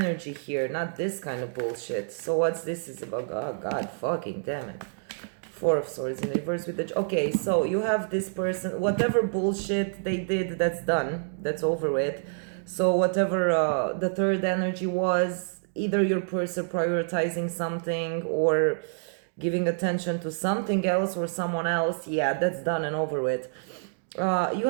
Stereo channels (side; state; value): left; silent; digital silence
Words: here, not this kind of bullshit. So what's this is about? Oh, God fucking damn it. 4 of Swords in reverse with the... Okay, so you have this person, whatever bullshit they did, that's done. That's over with. So whatever the third energy was, either your person prioritizing something or giving attention to something else or someone else, yeah, that's done and over with. You